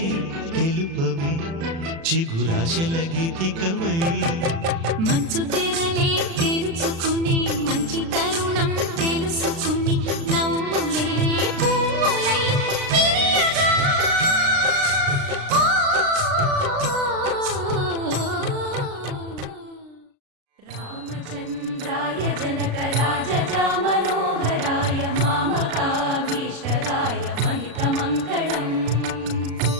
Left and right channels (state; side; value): late; left; 36 ms